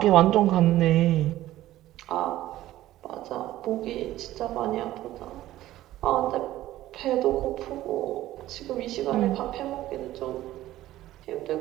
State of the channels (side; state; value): left; quieter; 14.8 dB